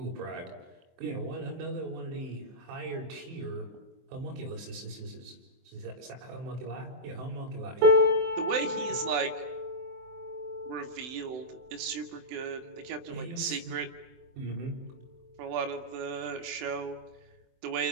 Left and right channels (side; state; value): left; late; 24 ms